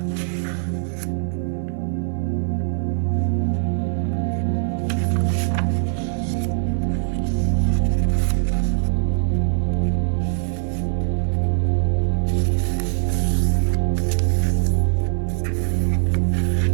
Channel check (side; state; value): left; silent; digital silence